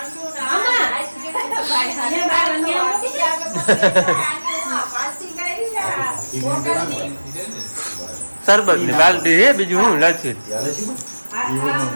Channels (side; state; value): both; inverted; correlation -1.00